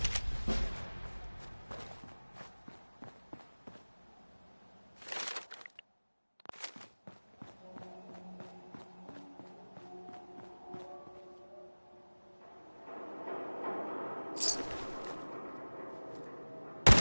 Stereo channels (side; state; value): both; inverted; correlation -1.00